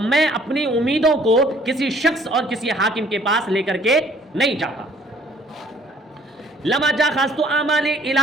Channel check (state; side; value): normal; both; correlation 0.59